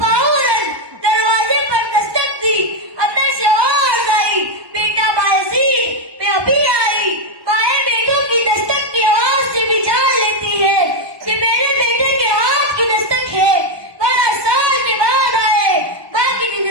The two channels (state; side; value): late; left; 1.1 ms